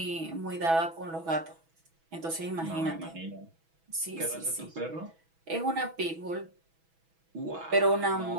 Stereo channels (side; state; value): left; late; 6.1 ms